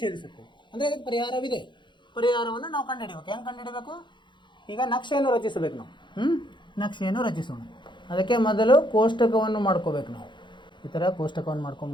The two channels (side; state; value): right; late; 0.23 ms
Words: ಛೇದಿಸುತ್ತವೆ. ಅಂದರೆ ಇದಕ್ಕೆ ಪರಿಹಾರವಿದೆ. ಪರಿಹಾರವನ್ನು ನಾವು ಕಂಡುಹಿಡಿಯಬೇಕು. ಹೆಂಗೆ ಕಂಡುಹಿಡಬೇಕು? ಈಗ ನಕ್ಷೆಯನ್ನು ರಚಿಸಬೇಕು ನಾವು. ನಕ್ಷೆಯನ್ನು ರಚಿಸೋಣ. ಅದಕ್ಕೆ ಮೊದಲು ಕೋಷ್ಟಕವನ್ನು ಮಾಡ್ಕೋಬೇಕು ನಾವು. ಈ ಥರ ಕೋಷ್ಟಕವನ್ನು